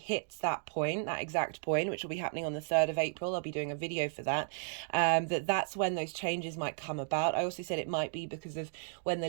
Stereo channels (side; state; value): left; silent; digital silence